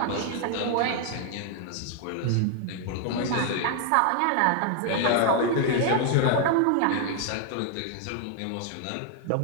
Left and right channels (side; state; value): both; different; correlation 0.00